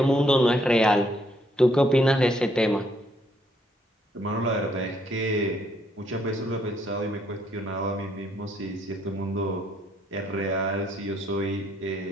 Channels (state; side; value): normal; both; correlation 0.70